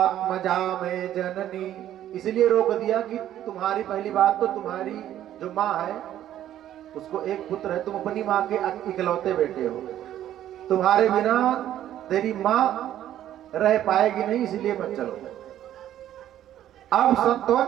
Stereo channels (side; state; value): left; quieter; 11.9 dB